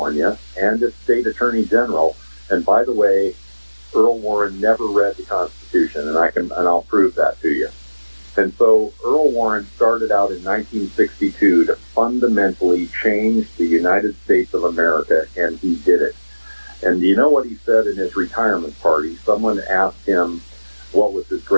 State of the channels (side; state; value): both; inverted; correlation -1.00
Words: and its state attorney general. And by the way, Earl Warren never read the Constitution, and I'll prove that to you. And so Earl Warren started out in 1962 to fundamentally change the United States of America, and he did it. And do you know what he said in his retirement party? Someone asked him what was his